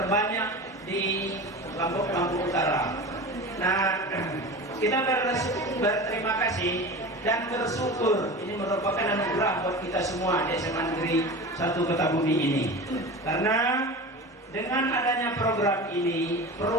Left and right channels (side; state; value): both; normal; correlation 0.31